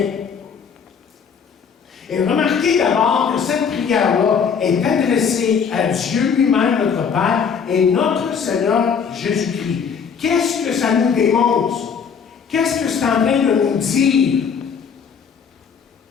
Et remarquez d'abord que cette prière-là est adressée à Dieu lui-même, notre Père, et notre Seigneur Jésus-Christ. Qu'est-ce que ça nous démontre? Qu'est-ce que c'est en train de nous dire?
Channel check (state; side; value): quieter; right; 6.6 dB